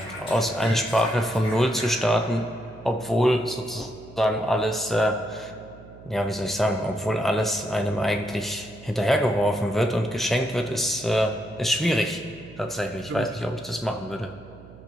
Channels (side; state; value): right; noise; hum, 19 dB below the sound